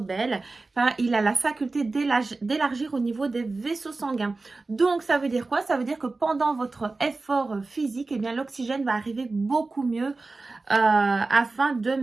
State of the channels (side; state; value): left; quieter; 3.5 dB